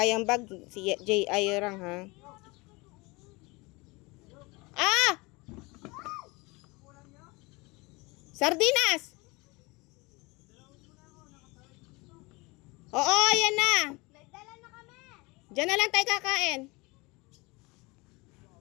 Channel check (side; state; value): right; quieter; 25.0 dB